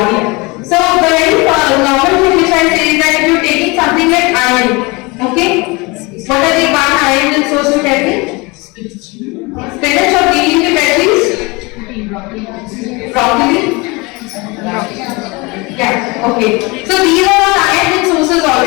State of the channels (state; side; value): quieter; right; 25.9 dB